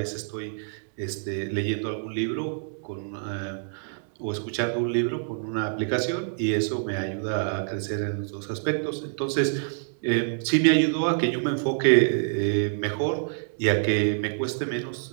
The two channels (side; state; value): left; silent; digital silence